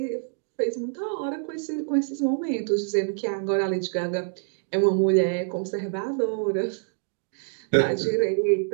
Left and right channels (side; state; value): left; silent; digital silence